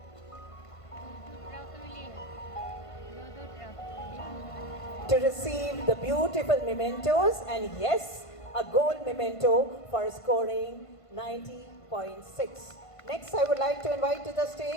Good afternoon. to receive the beautiful mementos and yes, a gold memento for scoring 90.6. Next, I would like to invite to the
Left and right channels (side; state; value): right; late; 1.5 ms